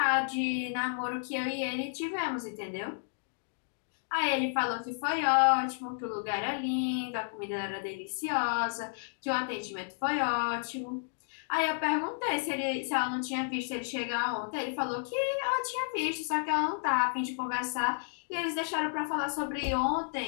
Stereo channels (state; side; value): silent; right; digital silence